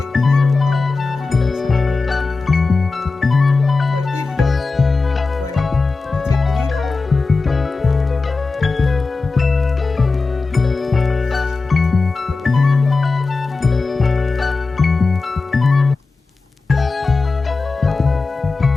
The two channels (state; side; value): quieter; right; 3.9 dB